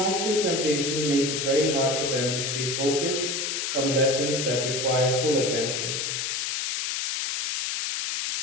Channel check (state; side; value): noise; left; hiss, 1 dB below the sound